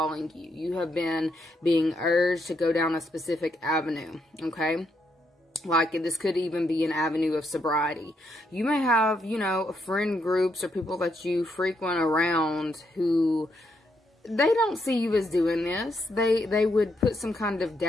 you. You have been being urged to go down a specific avenue, okay? Like, this could even be an avenue of sobriety. You may have, you know, friend groups or people that you frequent around who, they don't see you as doing this. They would put some kind of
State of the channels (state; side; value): normal; both; correlation 0.77